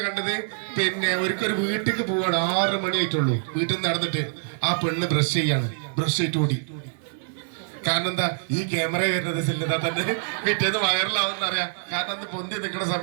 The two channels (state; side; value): silent; left; digital silence